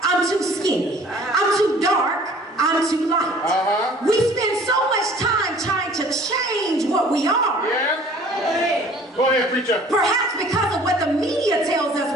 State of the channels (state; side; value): normal; both; correlation 0.51